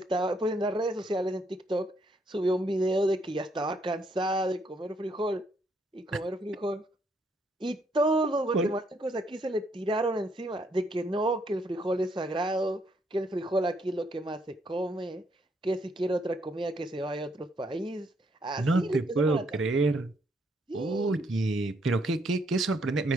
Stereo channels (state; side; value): normal; both; correlation 0.72